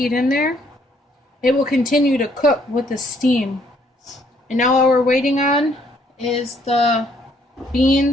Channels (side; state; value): both; normal; correlation 0.66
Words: in there. It will continue to cook with the steam. And now all we're waiting on is the